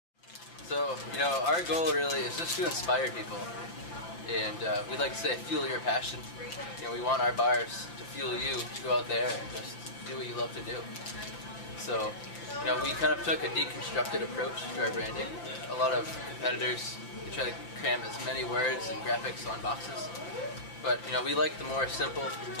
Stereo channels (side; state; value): right; late; 5.9 ms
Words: So our goal really is just to inspire people, and we'd like to say fuel your passion. We want our bars to fuel you to go out there and just do what you love to do. So we kind of took a deconstructed approach to our branding. A lot of competitors, we try to cram as many words and graphics on boxes, but we like the more simple,